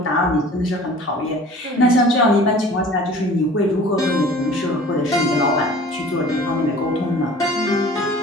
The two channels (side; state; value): both; normal; correlation 0.45